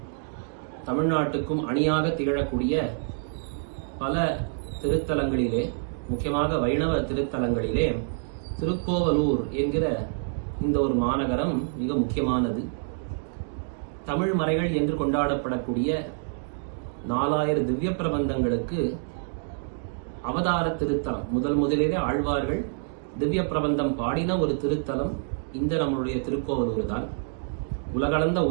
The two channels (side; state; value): left; silent; digital silence